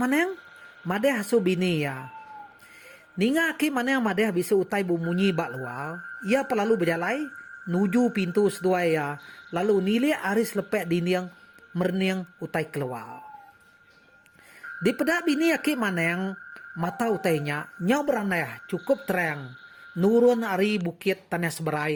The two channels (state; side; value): identical; both; correlation 1.00